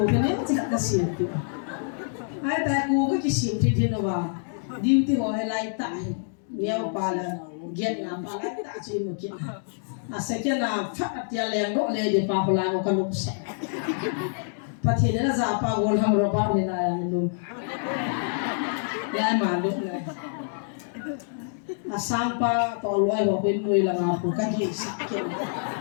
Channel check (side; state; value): right; silent; digital silence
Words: kan ni tidak kasih tu. Ayat aku ke kisah tu nawa. Diuti orang lain tak. Niau pala, gen ngapa lain tak sih mungkin. Asalnya na fat dia liang dok le di pahulan kan bisa. Patihnya zapa gol ham roba ni na yang lum. Yang malu le. Sampai toloi wapin mui lang aku kan di sakit.